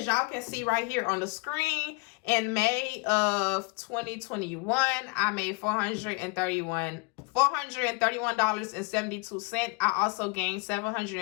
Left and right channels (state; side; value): quieter; right; 30.5 dB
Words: y'all can see right here on the screen, in May of 2021 I made $431.72. I also gained